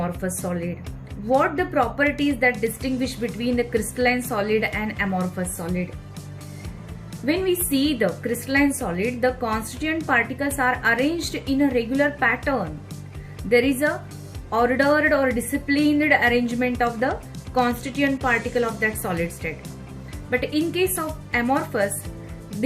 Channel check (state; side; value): identical; both; correlation 1.00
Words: solid. What the properties that distinguish between the crystalline solid and amorphous solid. When we see the crystalline solid, the constituent particles are arranged in a regular pattern. There is a ordered or disciplined arrangement of the constituent particle of that solid state. But in case of amorphous,